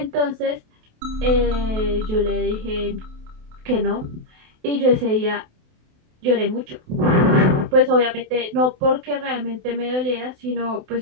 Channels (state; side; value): late; left; 28 ms